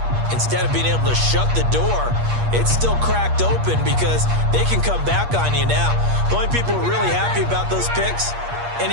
Instead of being able to shut the door, it's still cracked open because they can come back on you now. The only people who are really happy about those picks,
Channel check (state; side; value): late; left; 8.5 ms